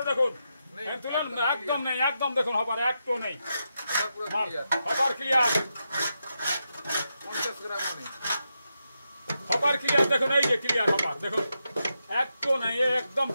দেখুন, একদম নেই, একদম দেখুন হপার একটু নেই, হপার ক্লিয়ার, হপার ক্লিয়ার দেখুন, এই যে ক্লিয়ার হপার দেখুন, একটু নেই, একদম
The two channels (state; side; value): inverted; both; correlation -0.86